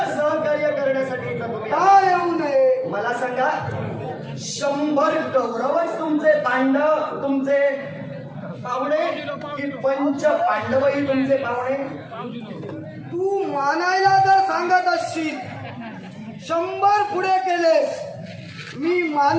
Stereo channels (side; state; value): both; identical; correlation 1.00